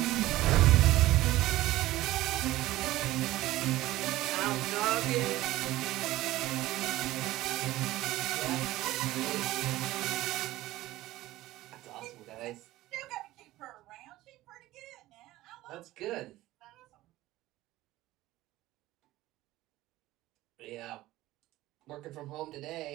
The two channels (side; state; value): left; quieter; 16.6 dB